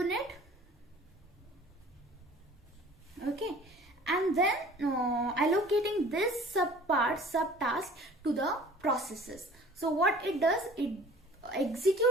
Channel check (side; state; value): both; normal; correlation 0.48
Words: okay, and then allocating this subtask to the processes. So what it does, it execute